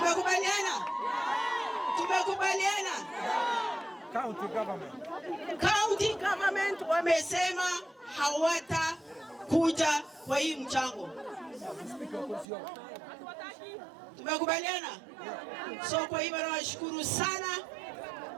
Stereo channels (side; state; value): left; drops out; at 12.5 s